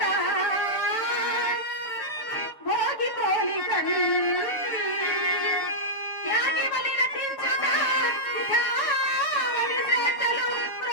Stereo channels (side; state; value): right; late; 6.8 ms